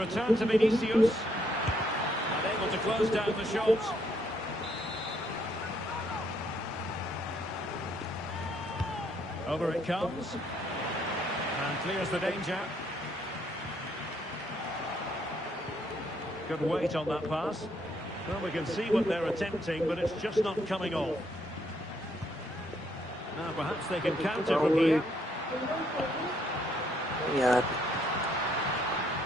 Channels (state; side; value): normal; both; correlation 0.71